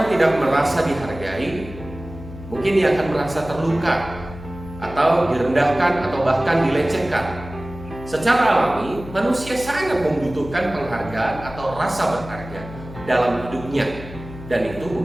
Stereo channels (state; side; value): noise; left; hum, 14 dB below the sound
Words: tidak merasa dihargai, mungkin dia akan merasa terluka atau direndahkan atau bahkan dilecehkan. Secara alami, manusia sangat membutuhkan penghargaan atau rasa berharga dalam hidupnya, dan itu